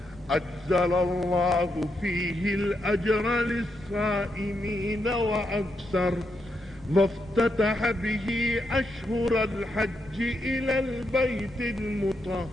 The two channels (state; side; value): normal; both; correlation 0.82